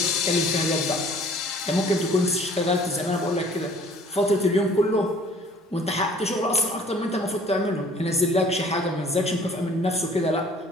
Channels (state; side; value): normal; both; correlation 0.53